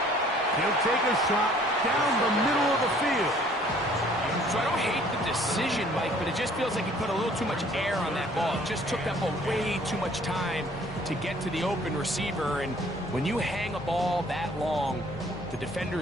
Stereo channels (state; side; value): normal; both; correlation 0.57